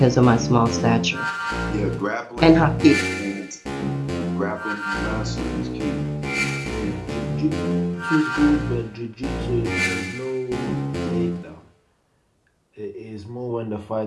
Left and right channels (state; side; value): identical; both; correlation 1.00